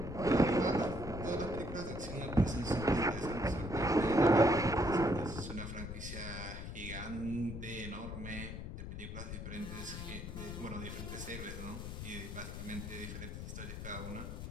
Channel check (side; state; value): left; noise; rumble, 7 dB below the sound